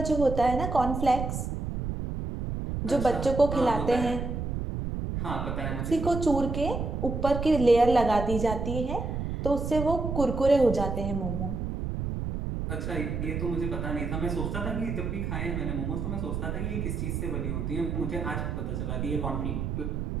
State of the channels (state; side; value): noise; right; rumble, 3 dB below the sound